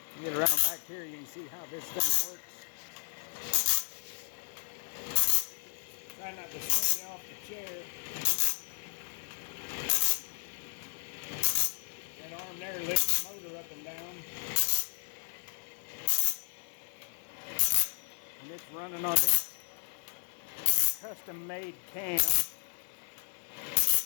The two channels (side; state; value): right; silent; digital silence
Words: Get around back here, you can see how this thing works. Try not to swing you off the chair. That arm there lifts the motor up and down. And it's running on this custom-made cam.